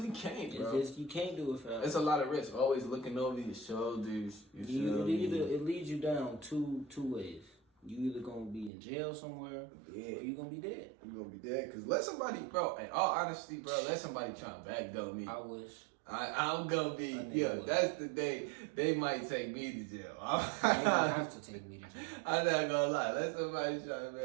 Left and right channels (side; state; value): left; drops out; at 8.7 s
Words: can't, bro. You can't do it forever. It's a lot of risk. Always looking over your shoulders. It leads you down two ways. You either gonna be in jail somewhere, or you gonna be dead. I'm gonna be dead. Cause let somebody, bro. In all honesty, bro, let somebody try and backdoor me. I wish. I'm gonna be. Yeah, that's the day they might take me to jail. They don't have to take me to jail. I'm not gonna lie. Let somebody try and